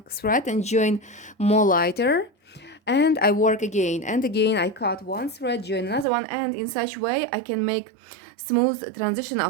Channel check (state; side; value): drops out; left; at 6.1 s